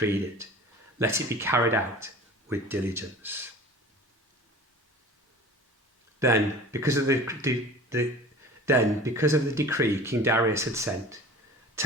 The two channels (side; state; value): both; normal; correlation 0.41